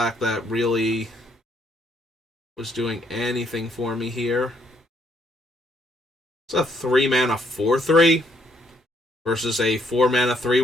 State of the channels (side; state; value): both; normal; correlation 0.71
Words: that really was doing anything for me here. It's a 3-mana 4/3 versus a 4-mana